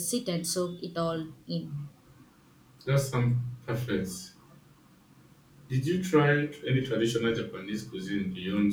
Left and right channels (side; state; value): both; identical; correlation 1.00